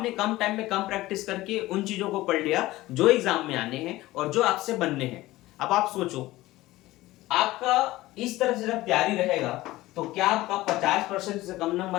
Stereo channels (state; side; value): quieter; right; 17.6 dB